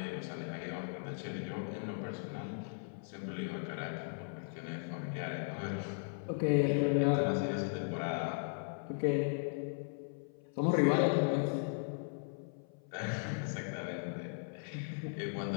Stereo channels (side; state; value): right; silent; 53 dB below the other